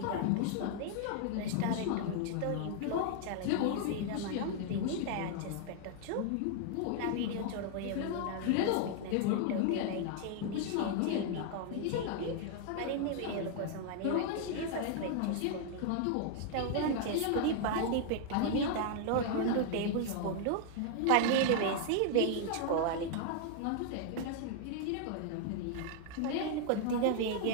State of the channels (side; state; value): both; different; correlation 0.00